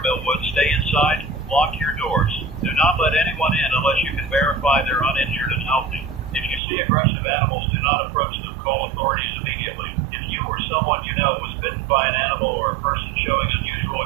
Millwood, stay inside, lock your doors. Do not let anyone in unless you can verify they're uninjured and healthy. If you see aggressive animals, do not approach them. Call authorities immediately. If you or someone you know was bitten by an animal or a person showing unusual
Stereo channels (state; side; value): drops out; left; at 6.6 s